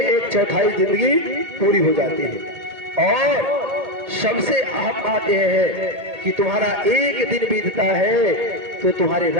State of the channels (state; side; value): late; left; 2.2 ms